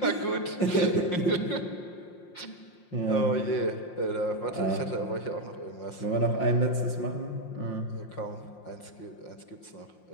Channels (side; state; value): right; late; 5.7 ms